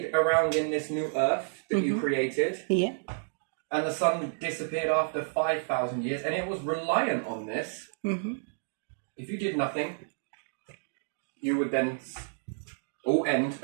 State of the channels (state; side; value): silent; left; digital silence